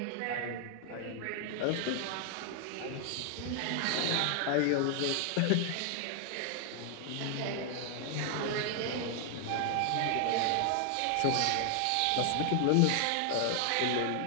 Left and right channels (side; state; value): both; different; correlation 0.00